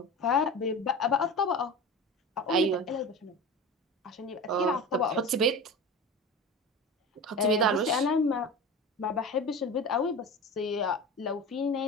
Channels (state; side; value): normal; both; correlation 0.30